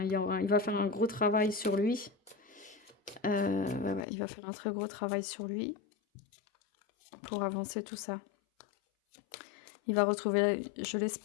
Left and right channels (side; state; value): right; drops out; at 4.0 s